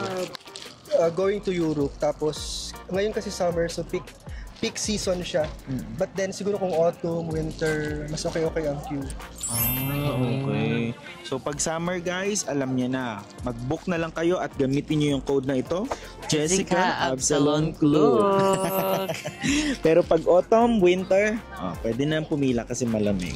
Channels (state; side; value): identical; both; correlation 1.00